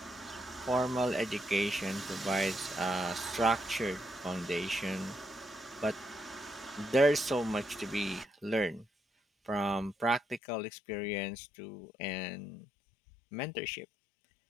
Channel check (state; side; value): drops out; right; at 10.4 s